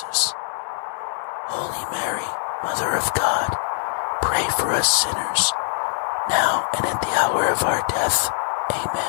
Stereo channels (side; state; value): right; silent; digital silence